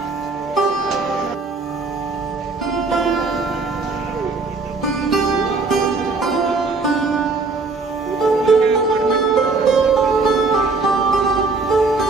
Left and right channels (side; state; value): left; quieter; 3.9 dB